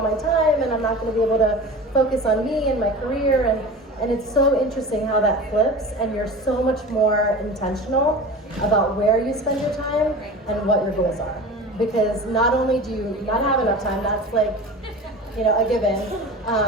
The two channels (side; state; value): both; normal; correlation 0.34